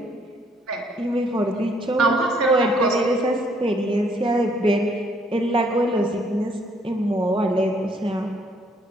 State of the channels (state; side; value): normal; both; correlation 0.66